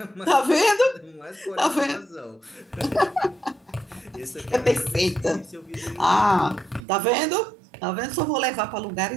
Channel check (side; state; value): left; drops out; at 6.8 s